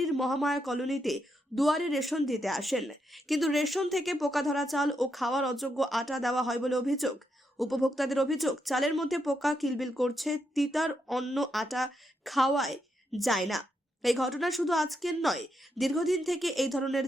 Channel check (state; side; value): normal; both; correlation 0.81